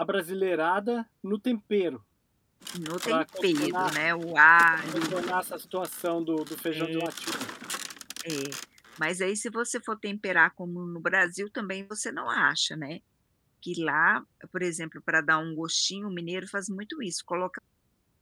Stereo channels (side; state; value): both; identical; correlation 1.00